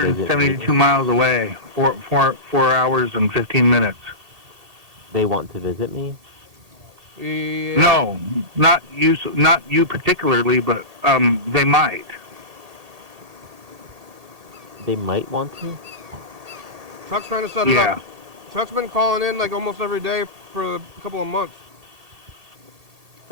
visit 272 me. miles away. 4 hours and 15 minutes. They want to visit me? Yeah. No, not you particularly, but they might. They might want to? Chuck's trying to set it Yeah. up. Chuck's been calling in like almost every day for a couple of months.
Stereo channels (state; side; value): late; left; 1.8 ms